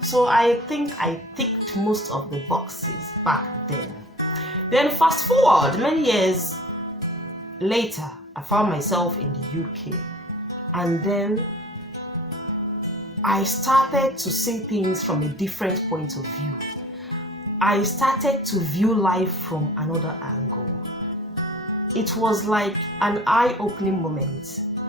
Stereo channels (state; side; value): normal; both; correlation 0.46